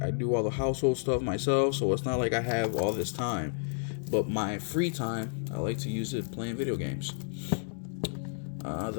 all the household stuff myself, so it's not like I have all this time. But my free time, I like to use it playing video games.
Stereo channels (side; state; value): right; silent; digital silence